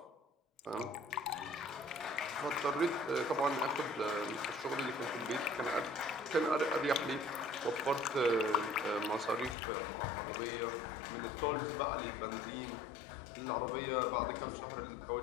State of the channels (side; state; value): right; drops out; at 9.6 s